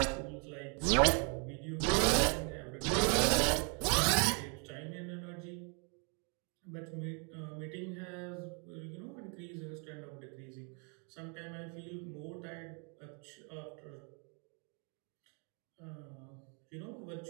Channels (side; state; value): left; quieter; 37.4 dB